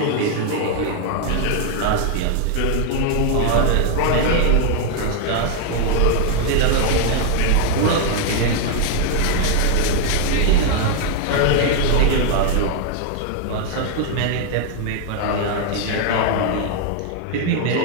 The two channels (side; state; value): both; different; correlation 0.00